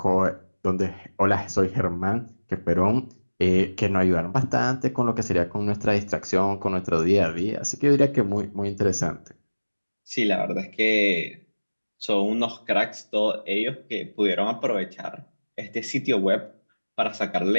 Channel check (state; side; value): inverted; both; correlation -1.00